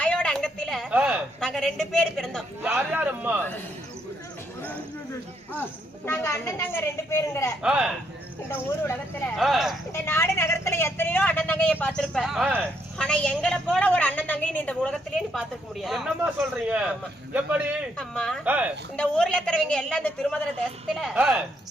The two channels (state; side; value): normal; both; correlation 0.74